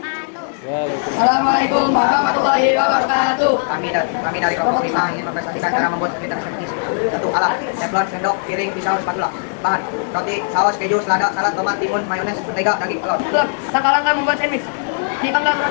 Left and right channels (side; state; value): right; silent; 67 dB below the other